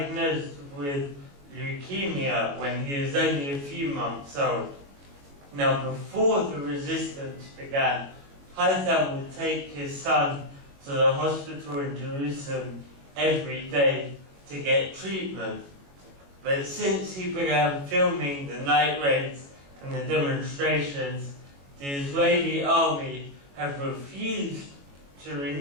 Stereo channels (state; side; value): late; left; 21 ms